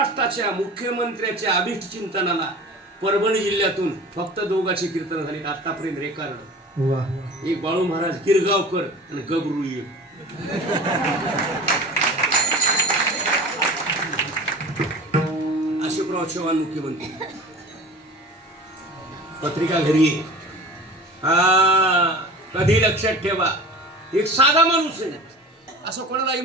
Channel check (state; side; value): normal; both; correlation 0.38